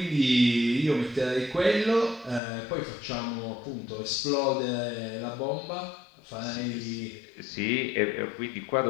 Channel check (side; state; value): right; drops out; at 2.4 s